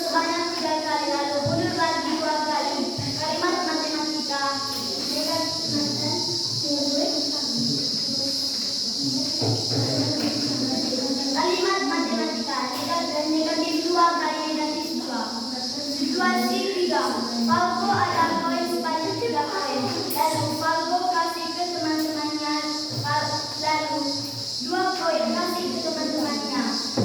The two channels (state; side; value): identical; both; correlation 1.00